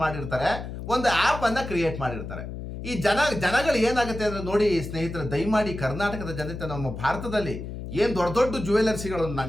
ಮಾಡಿರ್ತಾರೆ, ಒಂದು ಆ್ಯಪನ್ನು ಕ್ರಿಯೇಟ್ ಮಾಡಿರ್ತಾರೆ. ಈ ಜನಗಳು ಏನಾಗುತ್ತೆ ಅಂದರೆ ನೋಡಿ ಸ್ನೇಹಿತರೆ, ದಯಮಾಡಿ ಕರ್ನಾಟಕದ ಜನತೆ, ನಮ್ಮ ಭಾರತದಲ್ಲಿ ಏನು ದೊಡ್ಡ ದೊಡ್ಡ ಜ್ಯುವೆಲರ್ಸಿಗಳು,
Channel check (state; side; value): noise; left; hum, 8 dB below the sound